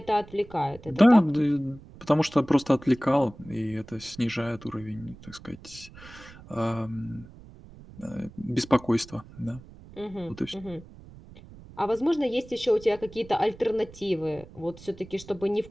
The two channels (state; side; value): noise; right; rumble, 19 dB below the sound